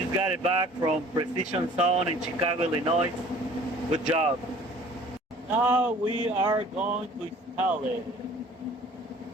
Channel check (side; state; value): both; normal; correlation 0.50